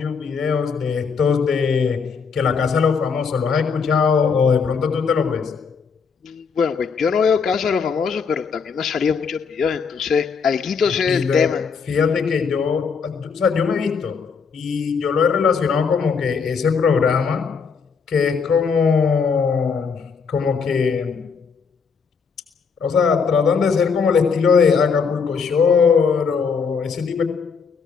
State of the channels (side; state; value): right; quieter; 5.7 dB